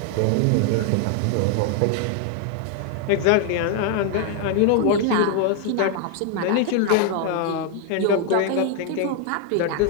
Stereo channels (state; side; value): different; both; correlation 0.00